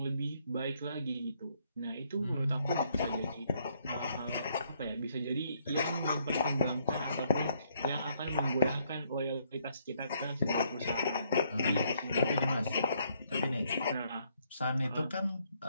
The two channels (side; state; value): both; inverted; correlation -0.69